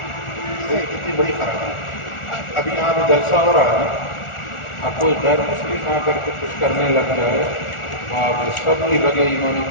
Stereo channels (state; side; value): late; right; 1.4 ms